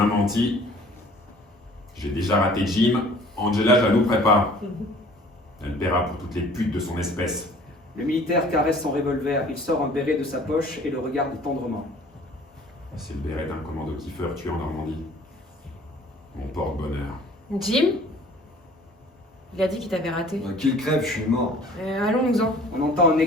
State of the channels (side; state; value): both; normal; correlation 0.51